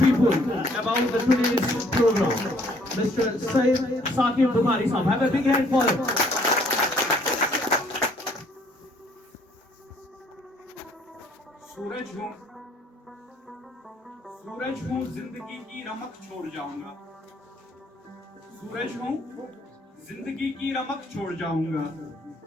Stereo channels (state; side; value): normal; both; correlation 0.62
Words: about the today's program. Mr. Said Saqib Bukhari sahab, have a big hand for him. सूरज हूँ जिंदगी की रमक छोड़ जाऊंगा, सूरज हूँ जिंदगी की रमक छोड़ जाऊंगा।